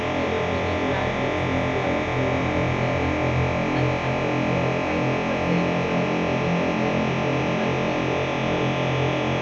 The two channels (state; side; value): identical; both; correlation 1.00